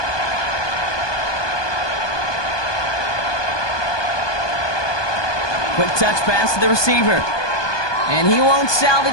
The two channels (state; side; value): late; right; 1.2 ms